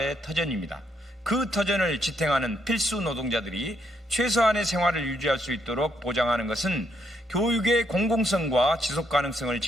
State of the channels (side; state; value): both; normal; correlation 0.75